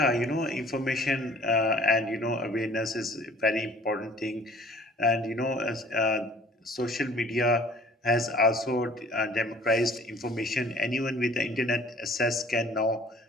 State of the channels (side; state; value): both; normal; correlation 0.53